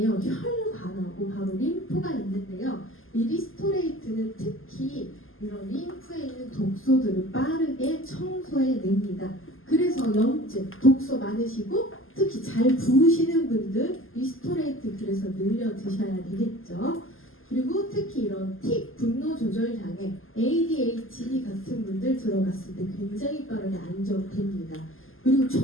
혈관하고 바로 림프가 있는데요. 이 리스토레이트는 특히 이런 림프에 있는 독소들을 빠르게 청소해냅니다. 그래서 염증, 독소 많으시고 특히 잘 부으시는 분들 리스토레이트 그래서 늘려 드셔야 되겠죠. 그리고 특히 이런 틱, 분노 조절 장애, ADHD 같은 분들 들어갔을 때 굉장히 빠르게 안정됩니다. 그리고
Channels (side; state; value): right; late; 0.59 ms